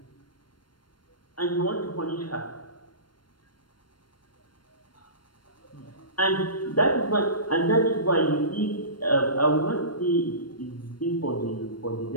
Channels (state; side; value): late; right; 0.72 ms